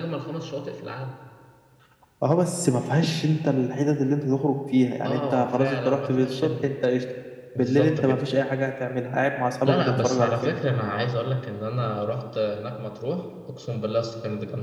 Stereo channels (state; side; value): identical; both; correlation 1.00